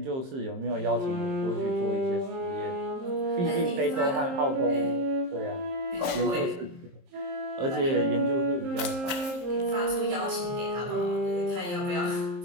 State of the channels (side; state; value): left; late; 23 ms